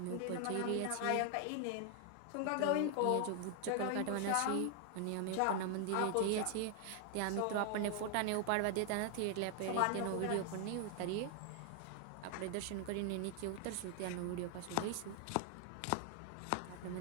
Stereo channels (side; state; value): both; different; correlation 0.00